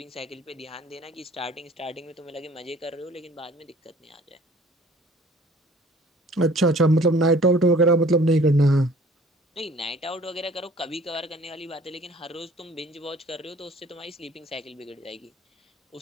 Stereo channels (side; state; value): both; normal; correlation 0.52